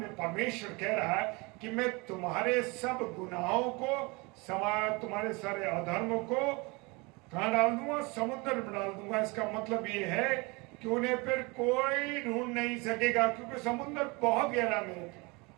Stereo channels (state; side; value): quieter; left; 27.0 dB